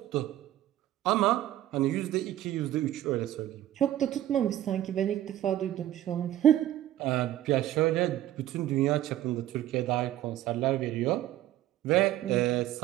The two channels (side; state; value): left; quieter; 13.2 dB